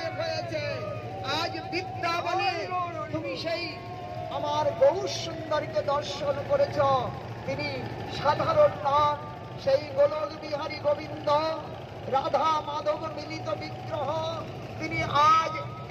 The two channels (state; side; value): identical; both; correlation 1.00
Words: হয়েছে। আজ বিদ্যা বলে তুমি সেই আমার গৌর সুন্দরকে দর্শন করেছ। তিনি সাধারণ নাম, সেই গোলক বিহারী গোবিন্দ রাধা মাধব মিলিত বিগ্রহ। তিনি আজ